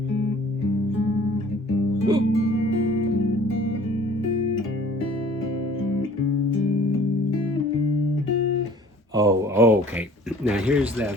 Oh, okay. Now here's the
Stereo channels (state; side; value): normal; both; correlation 0.51